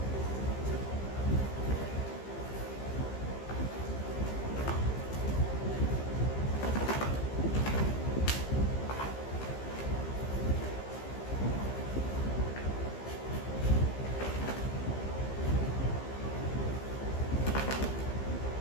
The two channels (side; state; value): right; late; 15 ms